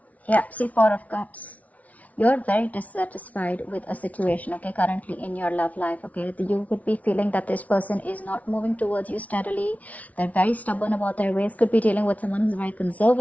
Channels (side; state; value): right; late; 0.069 ms